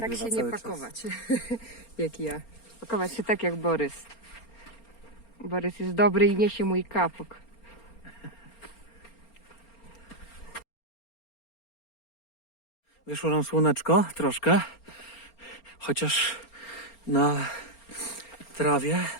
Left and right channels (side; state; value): right; late; 4.3 ms